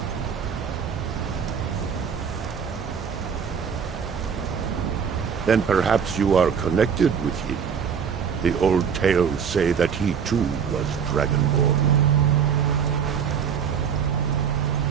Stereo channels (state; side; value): quieter; left; 7.2 dB